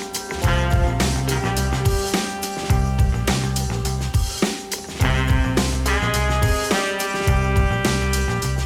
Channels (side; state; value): both; identical; correlation 1.00